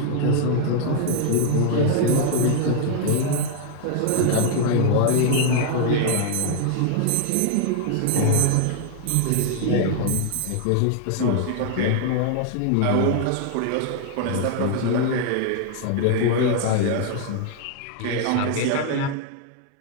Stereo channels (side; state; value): both; different; correlation 0.00